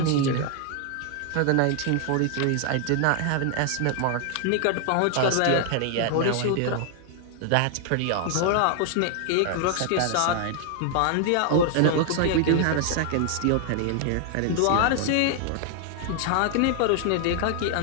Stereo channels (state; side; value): different; both; correlation 0.00